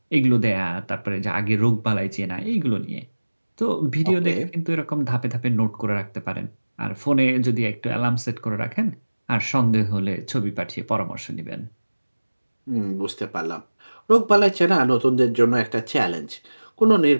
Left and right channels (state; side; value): inverted; both; correlation -1.00